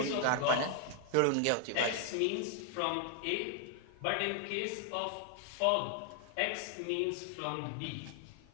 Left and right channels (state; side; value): different; both; correlation 0.00